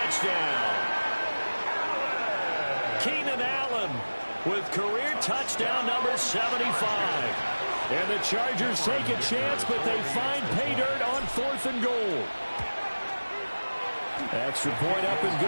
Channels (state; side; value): inverted; both; correlation -1.00